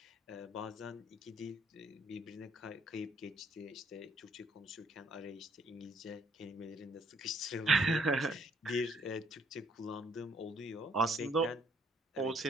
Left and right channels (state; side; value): normal; both; correlation 0.65